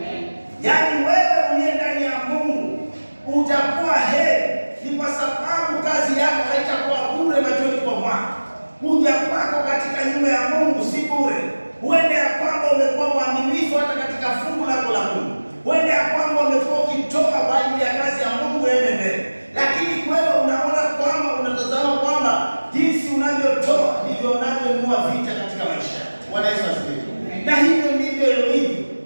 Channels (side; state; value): both; inverted; correlation -1.00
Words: Yaani wewe uliye ndani ya Mungu utakuwa heri, ni kwa sababu kazi yako haitakuwa bure machoni kwa Bwana. Kuja kwako katika nyumba ya Mungu si bure. Huende ya kwamba umekuwa mwaminifu hata katika fungu lako la Mungu. Huende ya kwamba umekuwa ukitoa kwa ajili ya kazi ya Mungu ende mbele. Lakini wewe unaona kwamba unatazama kwamba jinsi unavyotoa ndivyo unavyonunua vita katika maisha. Bwana Yesu asifiwe. Na hivyo ndivyo ilivyo.